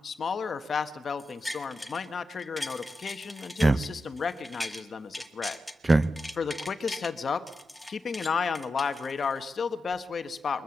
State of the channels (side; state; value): both; normal; correlation 0.90